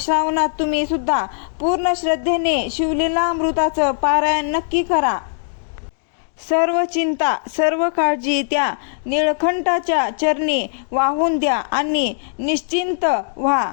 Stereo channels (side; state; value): right; silent; digital silence